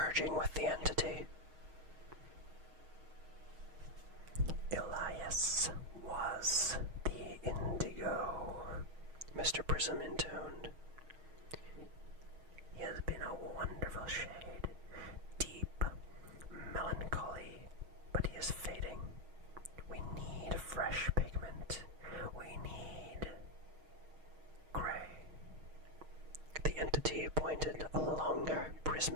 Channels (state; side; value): late; left; 6.4 ms